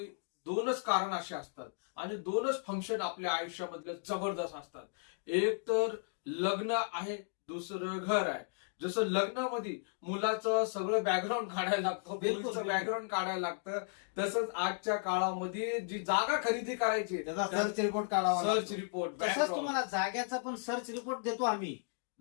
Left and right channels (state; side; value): silent; right; digital silence